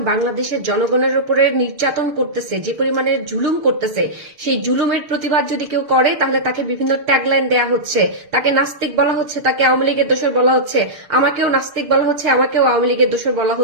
বাংলাদেশের জনগণের উপরে নির্যাতন করতেছে, যে পরিমাণে জুলুম করতেছে, সেই জুলুমের প্রতিবাদ যদি কেউ করে তাহলে তাকে বিভিন্ন ট্যাগলাইন দেয়া হচ্ছে, তাকে নাস্তিক বলা হচ্ছে, তাকে আওয়ামী লীগের দোসর বলা হচ্ছে, আমাকেও নাস্তিক বলা হচ্ছে, আমাকেও আওয়ামী লীগের দোসর বলা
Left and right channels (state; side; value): late; left; 6.7 ms